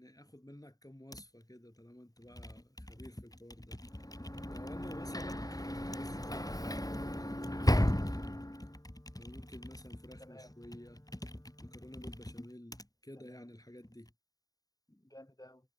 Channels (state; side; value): late; right; 0.18 ms